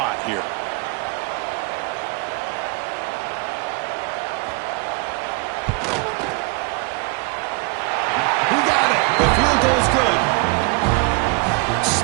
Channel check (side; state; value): left; quieter; 28.6 dB